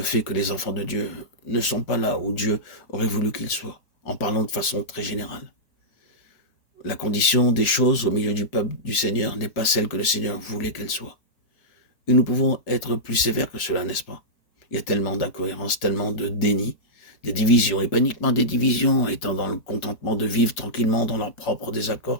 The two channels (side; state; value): right; late; 4.9 ms